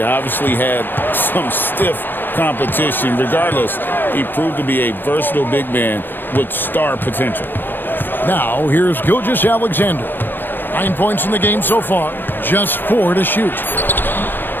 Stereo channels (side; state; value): right; late; 0.094 ms